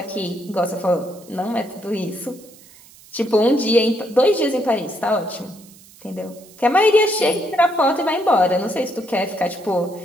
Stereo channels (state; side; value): noise; right; hiss, 24 dB below the sound